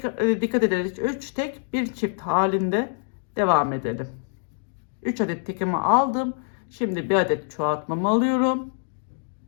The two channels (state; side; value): silent; right; digital silence